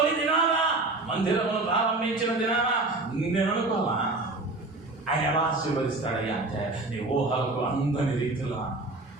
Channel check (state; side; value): quieter; left; 3.1 dB